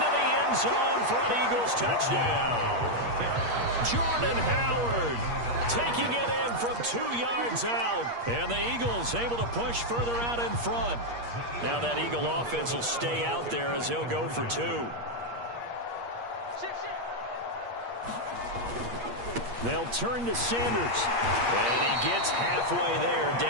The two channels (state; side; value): late; left; 8.5 ms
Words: the end zone for an Eagles touchdown. Jordan Howard taking it in from 2 yards out. And the Eagles able to push further out in front. Now that Eagle offense will stay out there as they'll go for 2. They'll turn to Sanders. And he gets halfway there